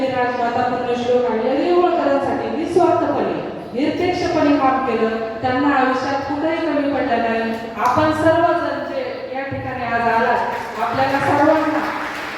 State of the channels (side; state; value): both; identical; correlation 1.00